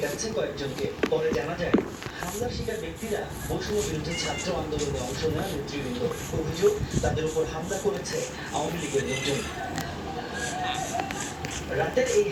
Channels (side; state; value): both; identical; correlation 1.00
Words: কয়েকজনকে। পরে জানা যায় হামলার শিকার ব্যক্তিরা বৈষম্য বিরোধী ছাত্র আন্দোলনে অংশ নেওয়া নেতৃবৃন্দ। অভিযোগ তাদের উপর হামলা করেছে আওয়ামী লীগের লোকজন। রাতের এই